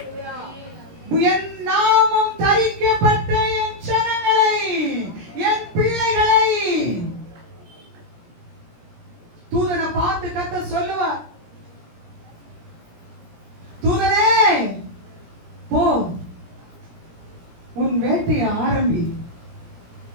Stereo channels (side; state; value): left; late; 17 ms